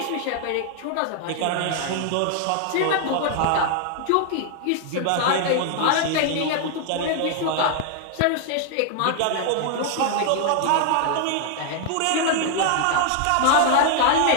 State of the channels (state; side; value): different; both; correlation 0.00